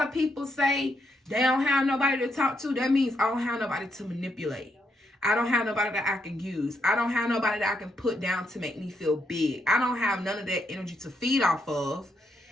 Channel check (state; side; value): normal; both; correlation 0.79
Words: of people say they don't have nobody to talk to, that means I don't have nobody to manipulate. I don't have nobody that I can use. I don't have nobody that I can put down to make me feel big. I don't have none of that energy to feed off of.